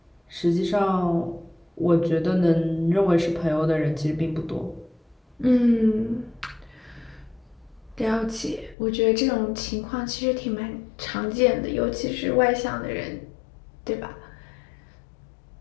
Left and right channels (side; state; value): right; drops out; at 8.8 s